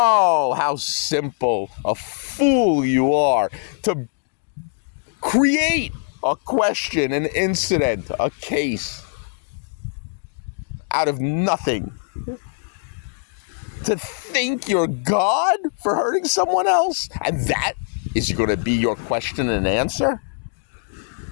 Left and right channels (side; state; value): right; silent; digital silence